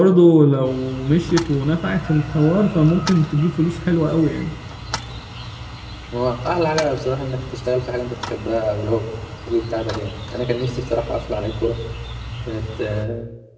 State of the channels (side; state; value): both; identical; correlation 1.00